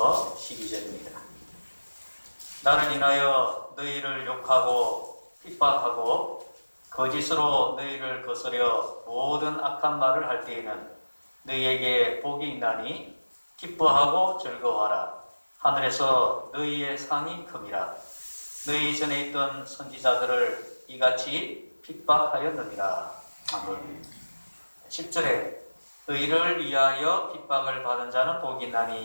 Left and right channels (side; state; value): both; inverted; correlation -1.00